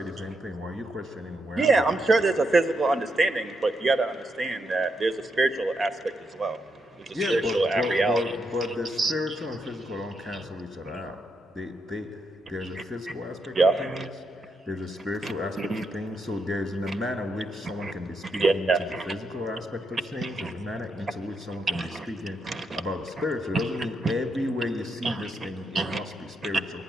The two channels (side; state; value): both; normal; correlation 0.81